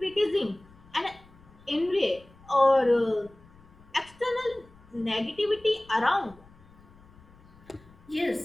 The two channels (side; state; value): left; noise; rumble, 25 dB below the sound